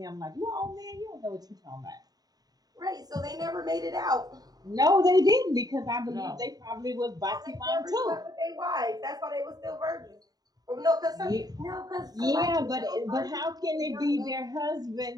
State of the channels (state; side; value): late; left; 0.19 ms